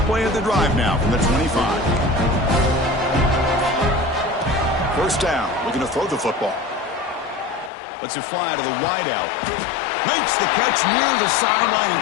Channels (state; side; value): drops out; right; at 7.7 s